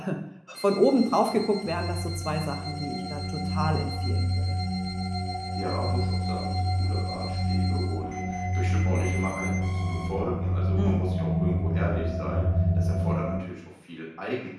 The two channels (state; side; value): identical; both; correlation 1.00